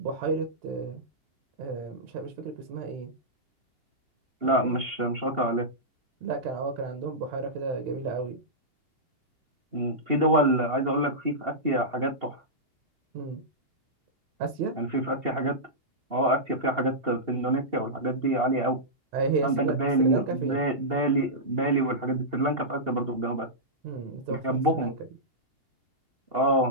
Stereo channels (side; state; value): left; late; 2.8 ms